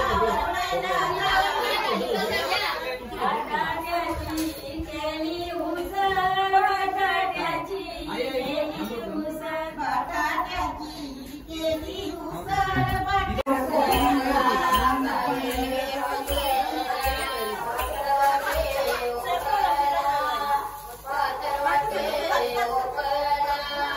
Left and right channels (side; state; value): both; identical; correlation 1.00